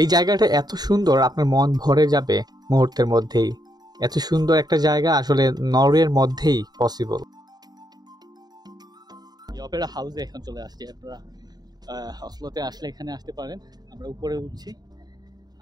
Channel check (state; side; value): late; left; 0.19 ms